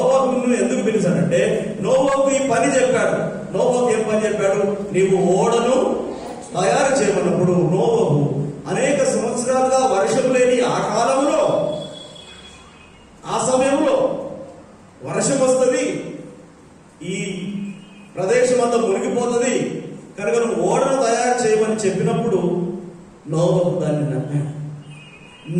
ఎందుకు పిలిచాడంటే నోవహుకు ఈ పని చెప్పాడు. నోవహుకు ఏం పని చెప్పాడు? నీవు ఓడను తయారు చేయమన్నప్పుడు నోవహు అనేక సంవత్సరాలుగా వర్షం లేని ఆ కాలంలో, ఆ సమయంలో వర్షం వస్తుంది, ఈ ప్రదేశం అంతా మునిగిపోతుంది కనుక నువ్వు ఓడను తయారు చేయమని చెప్పినప్పుడు నోవహు దాన్ని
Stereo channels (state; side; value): identical; both; correlation 1.00